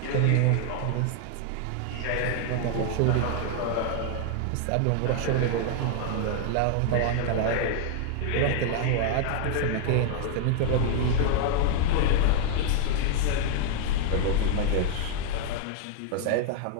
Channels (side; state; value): both; different; correlation 0.00